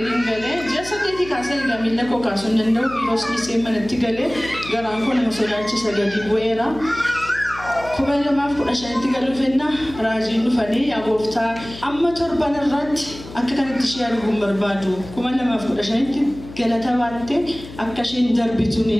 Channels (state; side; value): noise; left; hum, 15 dB below the sound